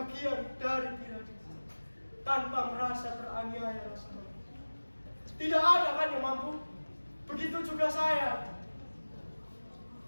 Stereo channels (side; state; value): both; inverted; correlation -1.00